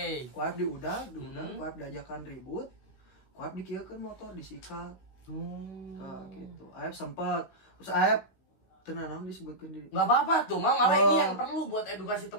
Ku Aep diudag ku Aep diajakan ribut, ku Aep dikieukeun motor disikat. Gitu. Aep sempat terus Aep tenang disebutkan diri. Nggak apa-apa tuh, malah ini yang perlu buat edukasi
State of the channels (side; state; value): right; late; 16 ms